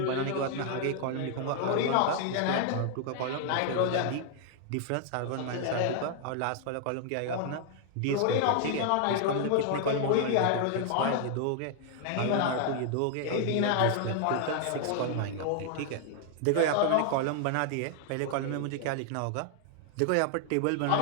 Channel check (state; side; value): different; both; correlation 0.00